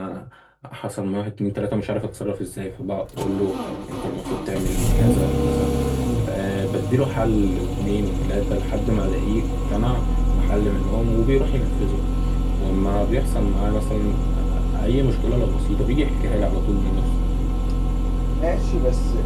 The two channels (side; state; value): both; identical; correlation 1.00